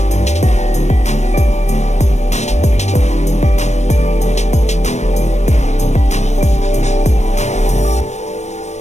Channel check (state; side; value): late; right; 0.33 ms